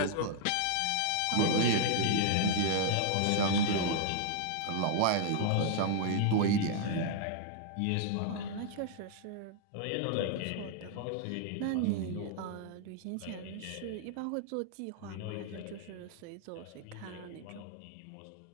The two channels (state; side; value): different; both; correlation -0.01